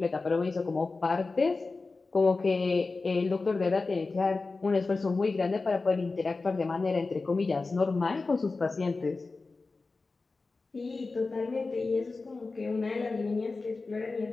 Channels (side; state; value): right; quieter; 3.8 dB